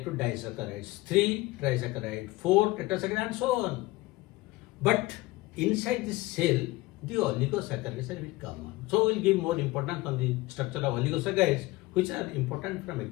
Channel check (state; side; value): quieter; right; 20.2 dB